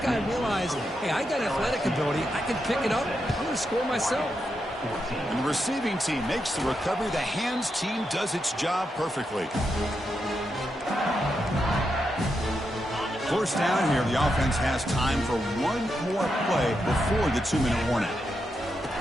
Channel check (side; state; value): both; normal; correlation 0.84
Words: guy realized, hey, I got athletic ability. I can pick it up. I'm going to score myself. And the receiving team makes the recovery. The hands team does its job perfectly. First down here, the offense has time for one more play before the 2-minute warning.